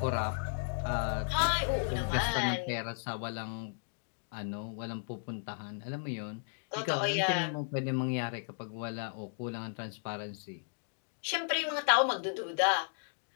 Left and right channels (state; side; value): silent; right; digital silence